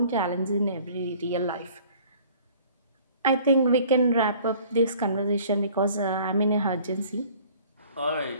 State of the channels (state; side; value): inverted; both; correlation -0.52